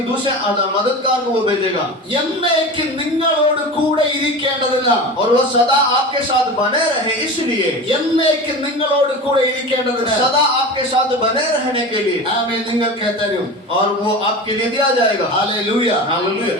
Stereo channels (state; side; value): normal; both; correlation 0.30